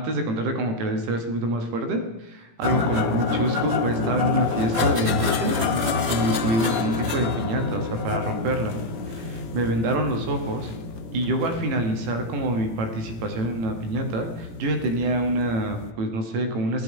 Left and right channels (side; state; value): left; late; 18 ms